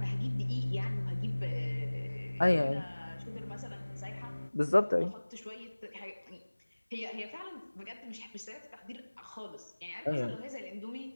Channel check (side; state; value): both; inverted; correlation -1.00